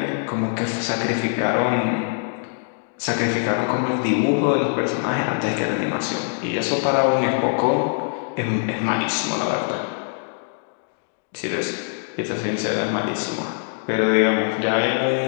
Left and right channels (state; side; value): silent; right; 63 dB below the other